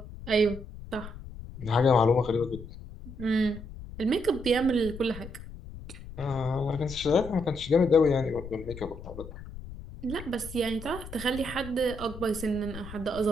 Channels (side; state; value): left; noise; rumble, 13 dB below the sound